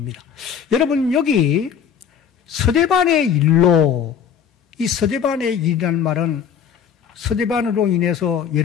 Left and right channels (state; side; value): quieter; right; 7.7 dB